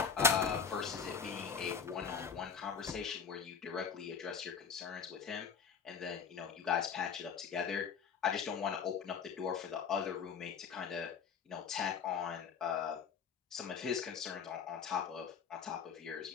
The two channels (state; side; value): quieter; right; 6.6 dB